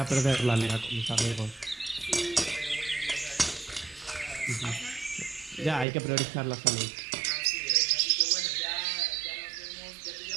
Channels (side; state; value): left; drops out; at 5.9 s